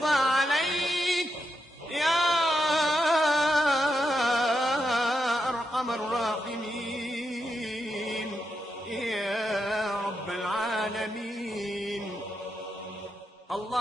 عليك يا أرحم الراحمين يا رب العالمين.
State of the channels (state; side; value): normal; both; correlation 0.84